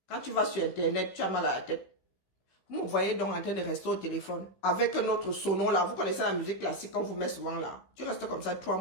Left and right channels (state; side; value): late; right; 15 ms